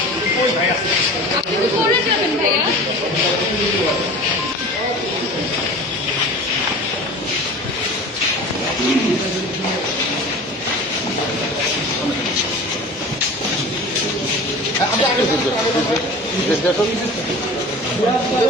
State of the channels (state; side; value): normal; both; correlation 0.37